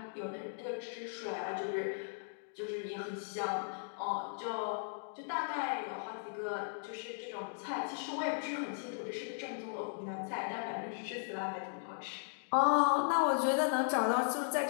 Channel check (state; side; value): silent; right; digital silence